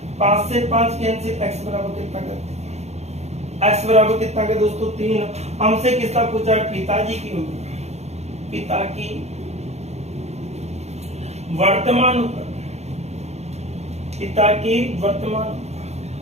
5 से 5 कैंसिल, x बराबर कितना करते हैं, x बराबर कितना का दोस्तों 3। हमसे किसका पूछा है पिताजी की उम्र, पिता की वर्तमान उम्र, पिता की वर्तमान।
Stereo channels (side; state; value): left; late; 0.32 ms